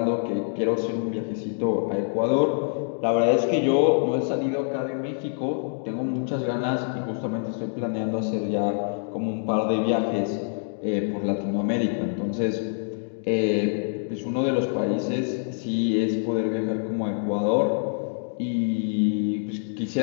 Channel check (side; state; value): right; silent; digital silence